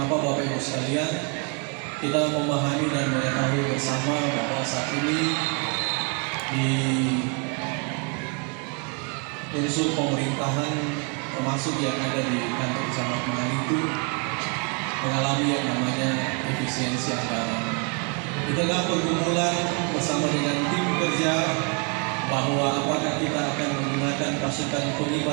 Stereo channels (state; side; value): quieter; left; 36.3 dB